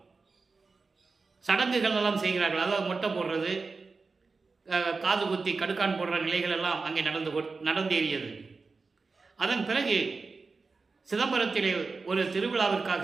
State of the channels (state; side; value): quieter; left; 4.2 dB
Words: சடங்குகள் எல்லாம் செய்கிறார்கள். அதாவது மொட்டை போடுறது, காது குத்தி கடுக்கான் போடுற நிலைகள் எல்லாம் அங்கே நடந்தேறியது. அதன் பிறகு சிதம்பரத்திலே ஒரு